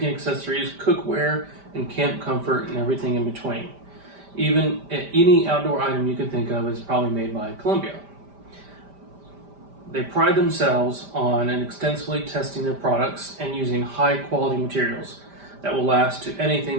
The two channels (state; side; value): late; left; 5.1 ms